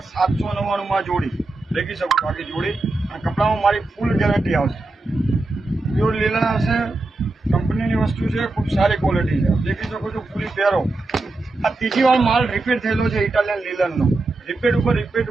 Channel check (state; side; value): quieter; left; 3.1 dB